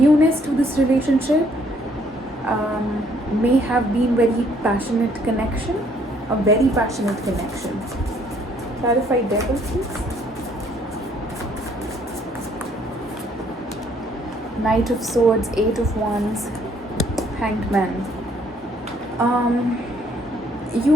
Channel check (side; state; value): both; normal; correlation 0.65